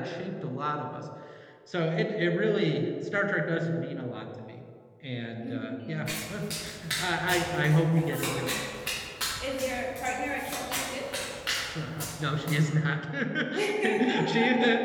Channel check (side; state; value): both; identical; correlation 1.00